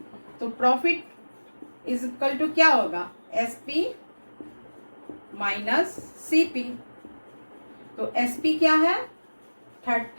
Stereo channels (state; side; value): inverted; both; correlation -1.00